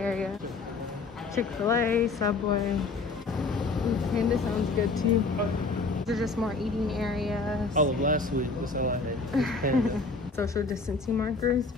Chick-fil-A, Subway. Ooh, Panda sounds good too. These are just more eating areas. All of last week was all I had. Was Panda. Social distancing markers.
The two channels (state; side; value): quieter; right; 3.9 dB